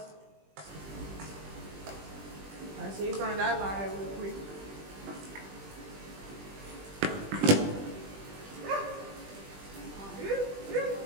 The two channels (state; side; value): late; left; 20 ms